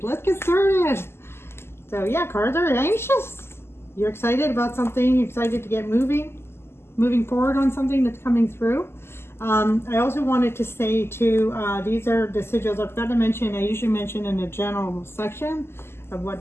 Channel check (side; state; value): right; late; 0.12 ms